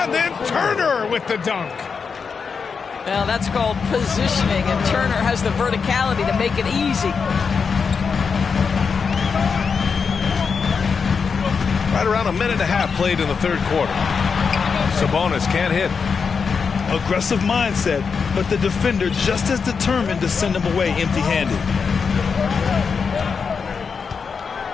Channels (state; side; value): quieter; right; 5.6 dB